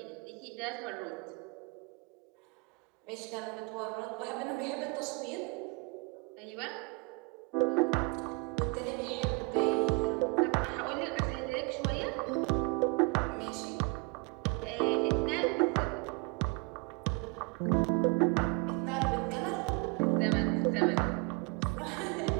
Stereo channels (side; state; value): left; quieter; 29.8 dB